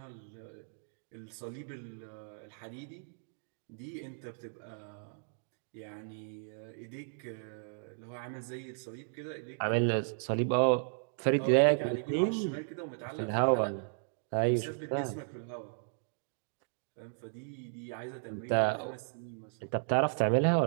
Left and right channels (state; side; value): silent; left; digital silence